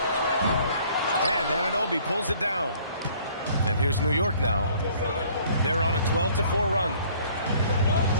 And Anunoby pulls it down. And here's New York now. They're on a 12-4 run.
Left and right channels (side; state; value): both; inverted; correlation -0.57